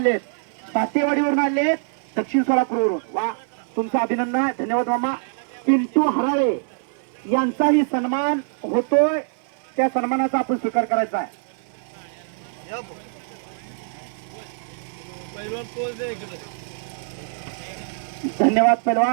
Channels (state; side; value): silent; left; 58 dB below the other